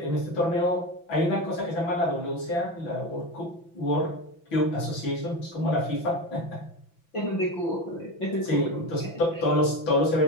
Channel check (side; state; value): right; late; 6.0 ms